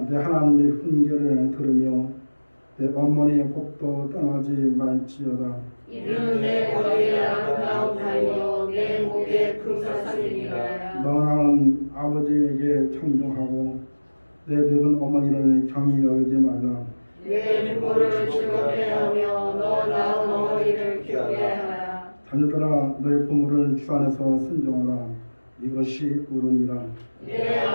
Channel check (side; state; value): both; inverted; correlation -1.00